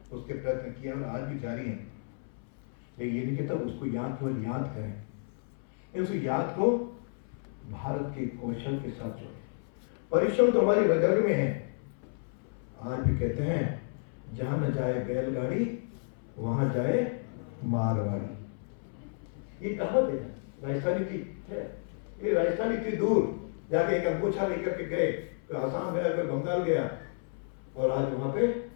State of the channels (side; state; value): right; silent; 57 dB below the other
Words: उसके प्रयत्न किया और आज भी जारी हैं। लेकिन ये नहीं कहता उसको केवल याद करें, उस याद को भारत के कौशल के साथ जोड़ें। परिश्रम तो हमारी रग रग में है। आज भी कहते हैं जहां न जाए बैलगाड़ी वहां जाए मारवाड़ी। ये कहावत है राजस्थानी की है। ये राजस्थानी इतनी दूर जाके एक अंगोछा लेकर के गए, तो आसाम गया, फिर बंगाल गया, और आज वहां पे